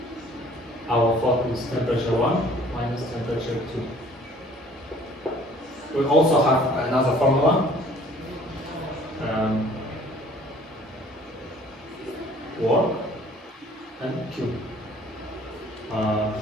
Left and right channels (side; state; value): both; normal; correlation 0.55